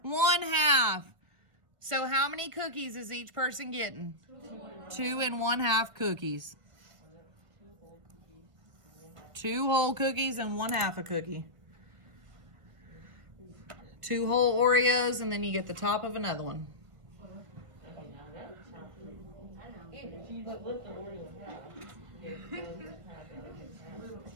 1/2. So how many cookies is each person getting? 2 and 1/2 cookies. 2 whole cookies and 1/2 a cookie. 2 whole Oreos, and then you get the top of another one.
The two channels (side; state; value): left; late; 1.7 ms